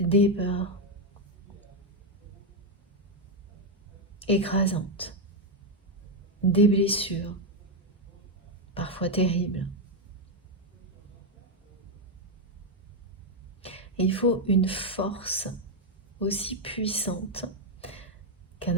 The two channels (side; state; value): both; normal; correlation 0.04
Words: peurs écrasantes, des blessures, parfois terribles. Et il faut une force aussi puissante qu'un